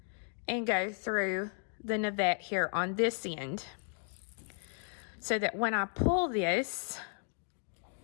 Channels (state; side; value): silent; right; 55 dB below the other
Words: and go through the navette here on this end. So that when I pull this,